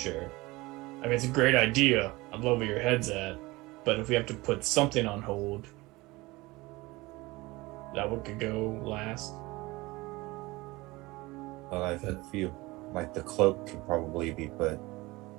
I mean, it's a great idea. I'd love where your head's at, but if we have to put something on hold, that one could go last. Well, I feel like the cloak could probably be put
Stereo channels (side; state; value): left; quieter; 21.5 dB